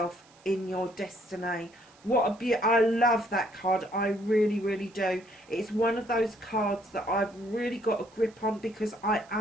in your destiny. What a I love that card. I really, really do. It's one of those cards that I've really got a grip on because I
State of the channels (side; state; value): right; noise; hiss, 29 dB below the sound